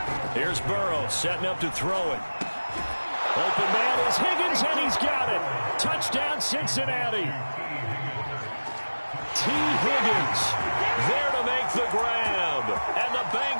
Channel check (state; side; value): inverted; both; correlation -1.00